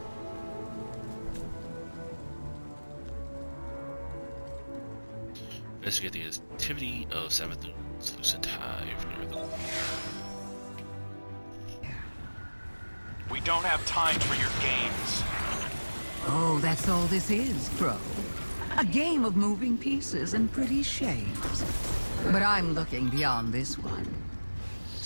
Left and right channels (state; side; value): inverted; both; correlation -1.00